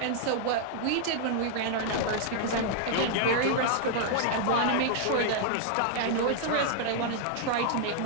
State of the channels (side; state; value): both; different; correlation -0.01